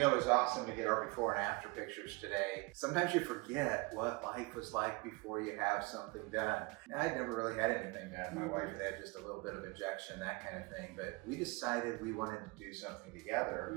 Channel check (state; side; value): quieter; left; 26.0 dB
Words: it was awesome to get our before and after pictures today. Sometimes you forget what life was like before you have something done. I'd never really had anything done. My wife had just a little bit of injection, that kind of thing. But we decided we wanted to do something